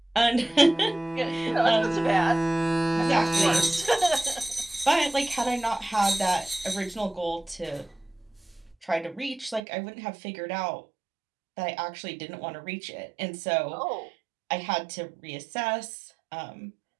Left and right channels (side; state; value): left; drops out; at 9.6 s